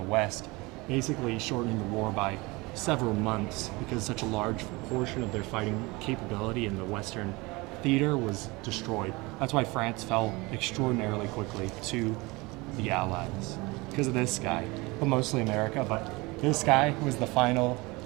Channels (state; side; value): quieter; left; 24.0 dB